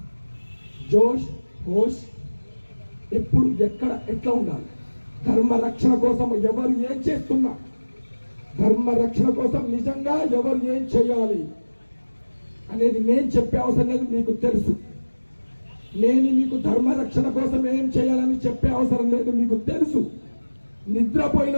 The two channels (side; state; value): both; inverted; correlation -1.00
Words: జోష్ హోష్ ఎప్పుడు ఎక్కడ ఎట్లా ఉండాలి, ధర్మ రక్షణ కోసం ఎవరు ఏం చేస్తున్నా, ధర్మ రక్షణ కోసం నిజంగా ఎవరు ఏం చేయాలి అనేది నేను చెప్పే అవసరం లేదు, మీకు తెలుసు. నేను మీకు ధర్మ రక్షణ కోసం ఏం చేయాలని చెప్పే అవసరం లేదు, మీకు తెలుసు. నిద్రపోయిన